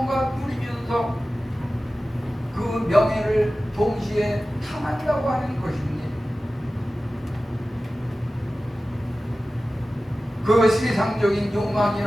누리면서 그 명예를 동시에 탐한다고 하는 것입니다. 그 세상적인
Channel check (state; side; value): normal; both; correlation 0.95